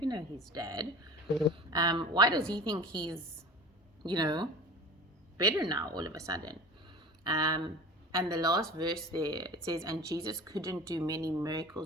know his dad? Why does he think he's, better now all of a sudden? And the last verse there, it says, and Jesus couldn't do many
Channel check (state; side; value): normal; both; correlation 0.38